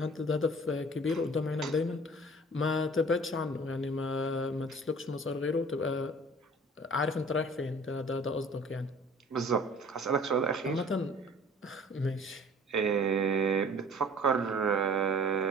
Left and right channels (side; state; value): both; normal; correlation 0.48